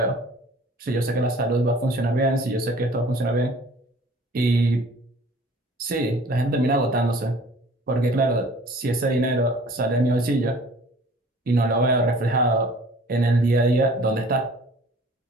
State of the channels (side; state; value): both; normal; correlation 0.50